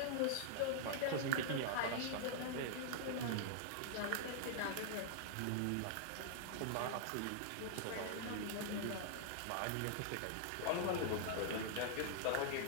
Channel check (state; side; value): different; both; correlation -0.01